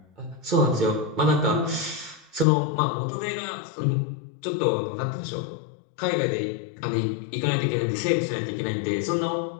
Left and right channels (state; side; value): drops out; right; at 2.5 s